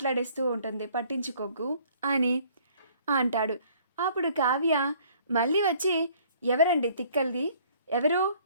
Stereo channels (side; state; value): both; inverted; correlation -0.58